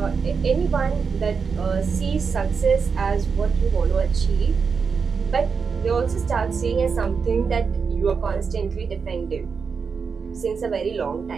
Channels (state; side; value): quieter; left; 5.6 dB